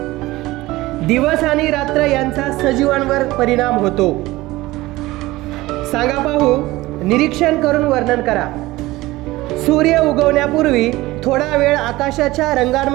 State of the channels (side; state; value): left; quieter; 18.8 dB